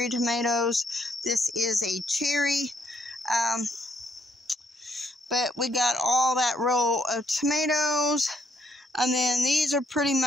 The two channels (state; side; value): normal; both; correlation 0.71